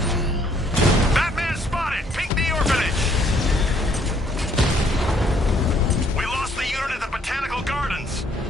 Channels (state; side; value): normal; both; correlation 0.66